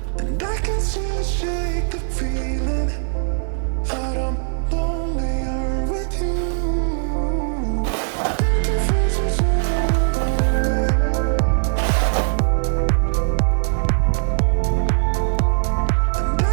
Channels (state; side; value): silent; left; digital silence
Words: And I can still shake the feeling that I'm lonelier with you.